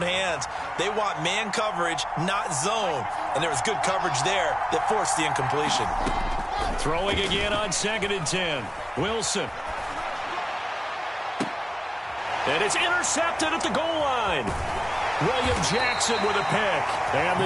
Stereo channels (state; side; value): identical; both; correlation 1.00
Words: hands. They want man coverage, not zone. And there was good coverage there that forced the incompletion. Throwing again on 2nd and 10. Wilson. And it's intercepted at the goal line. William Jackson with a pick. And